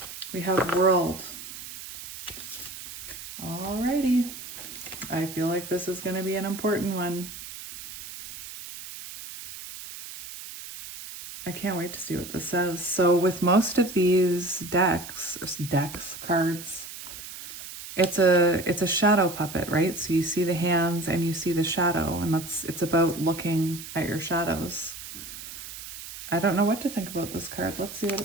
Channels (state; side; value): noise; right; hiss, 12 dB below the sound